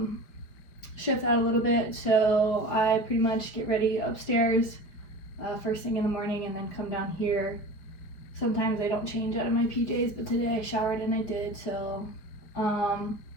shift that a little bit. So I pretty much get ready upstairs first thing in the morning and then come down here. Sometimes I don't change out of my PJs, but today I showered and I did. So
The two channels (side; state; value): right; late; 5.6 ms